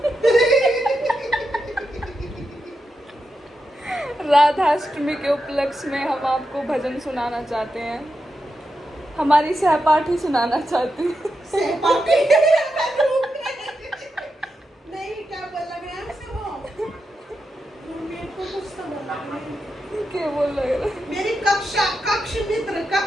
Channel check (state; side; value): normal; both; correlation 0.87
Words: राधा अष्टमी के उपलक्ष्य में हम आपको भजन सुनाना चाहते हैं। हमारी सहपाठी सुनाना चाहती है। नहीं, क्या बोला मैं आपसे वो क्या बोल रहे हो? मेरी कक्ष मित्र